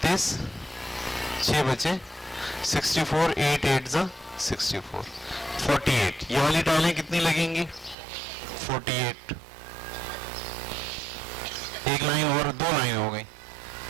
6 बचे 64, 8 8 जा 64, 48। ये वाली टाइलें कितनी लगेंगी? 48। एक लाइन और 2 लाइन हो गई।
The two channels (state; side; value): drops out; left; at 8.0 s